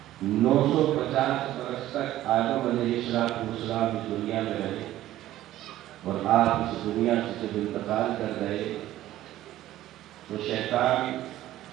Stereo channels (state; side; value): quieter; left; 14.2 dB